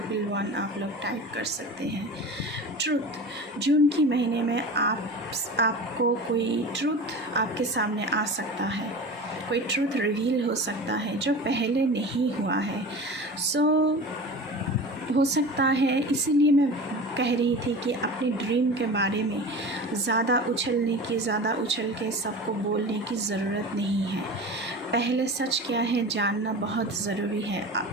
आप लोग टाइप कर सकते हैं। ट्रुथ, जून की महीने में आपको कोई ट्रुथ आपके सामने आ सकता है, कोई ट्रुथ रिवील हो सकता है जो पहले नहीं हुआ है। सो हो सकता है, इसीलिए मैं कह रही थी कि अपने ड्रीम के बारे में ज़्यादा उछल के सबको बोलने की ज़रूरत नहीं है। पहले सच क्या है जानना बहुत ज़रूरी है।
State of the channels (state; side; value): normal; both; correlation 0.34